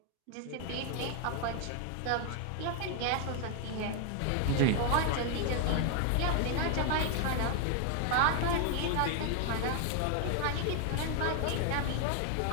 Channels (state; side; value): different; both; correlation 0.00